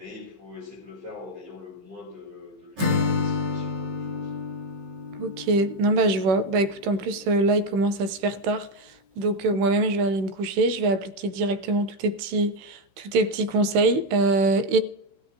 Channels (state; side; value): late; left; 16 ms